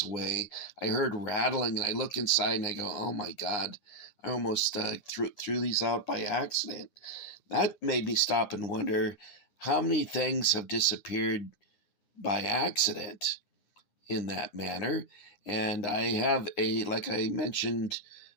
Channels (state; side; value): late; right; 9.8 ms